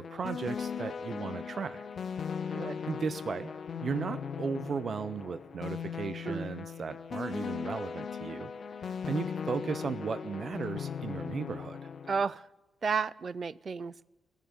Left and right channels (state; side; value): normal; both; correlation 0.78